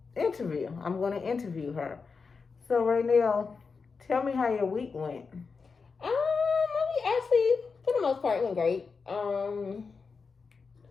interview. I'm gonna interview her. So Raynell, tell me how your week went. Actually, for the most part, it went great.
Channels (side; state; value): right; quieter; 5.0 dB